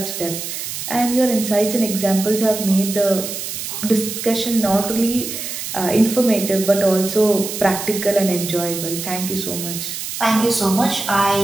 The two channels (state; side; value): noise; right; hiss, 6 dB below the sound